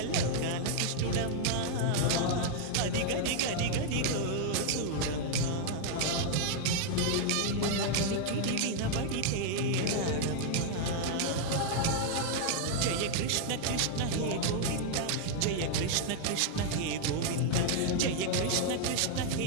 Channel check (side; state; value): both; different; correlation 0.00